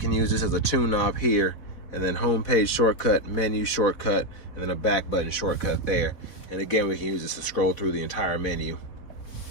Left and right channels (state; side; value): late; right; 4.1 ms